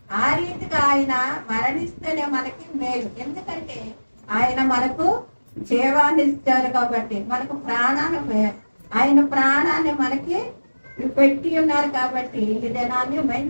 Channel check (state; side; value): inverted; both; correlation -1.00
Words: ఆ రీతిగా ఆయన మరణిస్తేనే మనకి మేలు. ఎందుకంటే ఆయన మనకు జీవాన్ని ఇచ్చారు కాబట్టి, మనకు ప్రాణాన్ని, ఆయన ప్రాణాన్ని మనకి పెట్టి ఉన్నారు కాబట్టి ఈ దినాన్ని